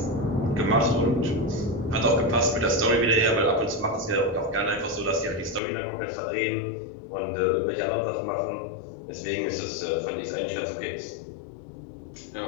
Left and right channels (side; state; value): right; drops out; at 5.6 s